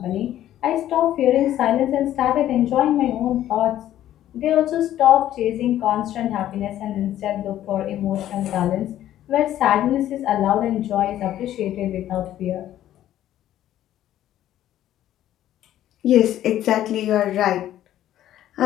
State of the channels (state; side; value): quieter; right; 12.5 dB